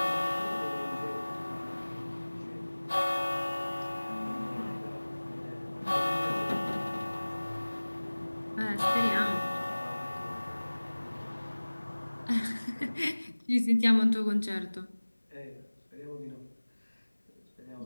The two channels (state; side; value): inverted; both; correlation -1.00